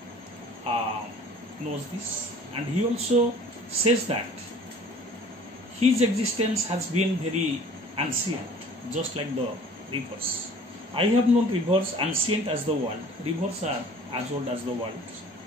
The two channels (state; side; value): normal; both; correlation 0.49